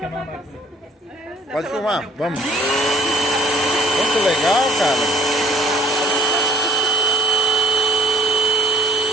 Pode filmar, vamos. Muito legal, cara.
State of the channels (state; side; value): normal; both; correlation 0.56